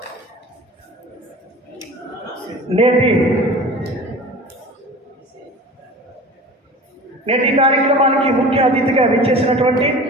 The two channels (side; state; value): both; normal; correlation 0.38